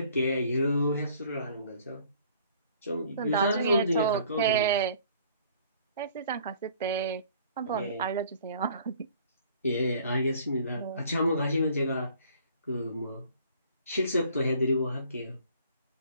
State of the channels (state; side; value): inverted; both; correlation -0.55